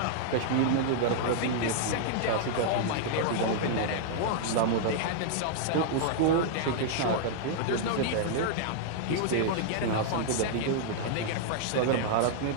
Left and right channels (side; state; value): both; different; correlation -0.01